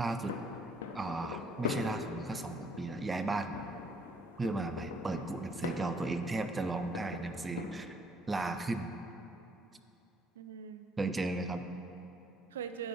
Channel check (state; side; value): normal; both; correlation 0.65